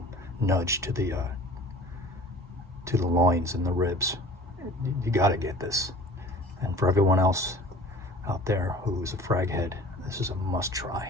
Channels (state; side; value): normal; both; correlation 0.45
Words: nudge to the loins and the ribs. You got to get this. And for everyone else out there who's a frag head, this is a must